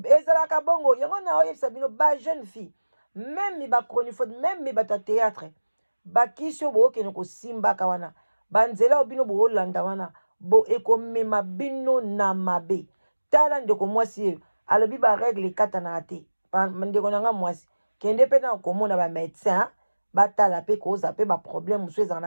Ezalaka bongo. Yango na oyo sabino ba jeune fille. Même mi ba chroniphone, même mi ba théâtre. Bakisio bo ke noko simba kawana. Banzela obino bo olanda wana. Bo ekomema bino na mabe. Tala ndeko mwasi alobi ba règle kata na ate. Ndeko nanga mwasi. Kende pe na komona ba médecin, ba tala pe koza pe ba problème musu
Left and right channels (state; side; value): inverted; both; correlation -1.00